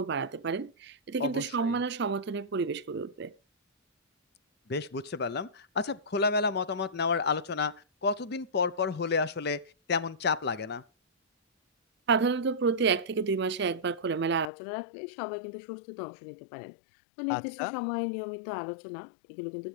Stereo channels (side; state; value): right; drops out; at 14.5 s